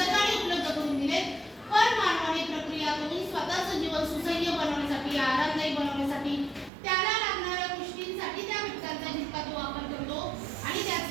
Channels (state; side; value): drops out; left; at 6.7 s